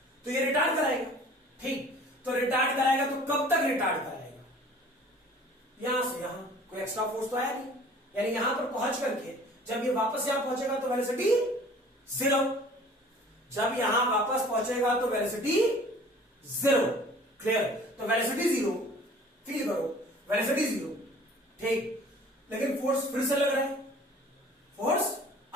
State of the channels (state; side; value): normal; both; correlation 0.49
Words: तो ये रिटार्ड कराएगा। ठीक, तो रिटार्ड कराएगा तो कब तक रिटार्ड कराएगा? यहां से यहां, कोई एक्स्ट्रा फोर्स तो आया नहीं, यानी यहां पर पहुंच करके जब ये वापस यहां पहुंचेगा तो वेलोसिटी 0, जब यहां वापस पहुंचेगा तो वेलोसिटी 0। क्लियर? तो वेलोसिटी 0, फील करो, वेलोसिटी 0। ठीक, लेकिन फोर्स फिर से लग रहा है, फोर्स